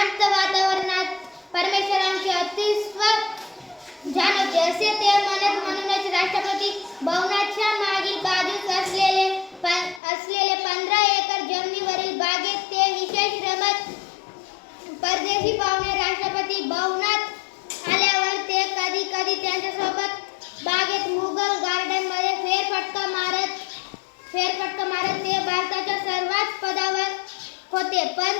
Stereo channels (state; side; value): drops out; right; at 10.0 s